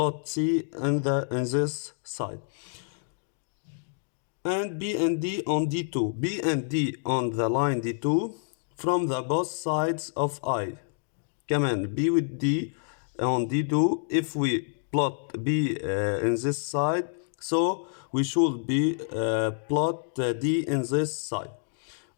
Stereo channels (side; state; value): right; silent; digital silence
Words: C in this side. And B and D on D2. B and D on the line D2 from the both sides of I. كمان B with D on D2. If we plot B in this side, so we should be plot D in this side,